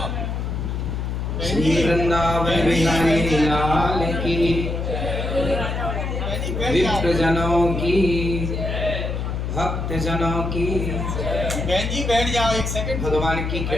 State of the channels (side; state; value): left; noise; hum, 2 dB below the sound